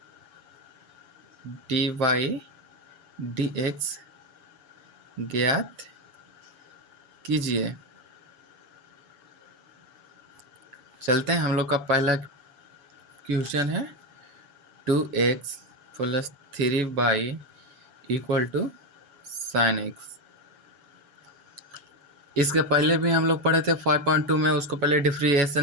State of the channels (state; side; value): late; left; 7.0 ms